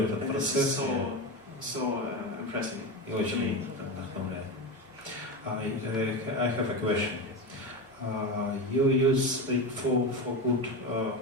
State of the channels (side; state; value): both; normal; correlation 0.20